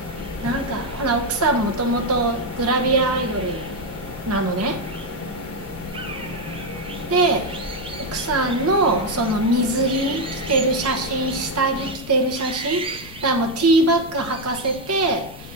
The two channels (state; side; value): noise; left; rumble, 16 dB below the sound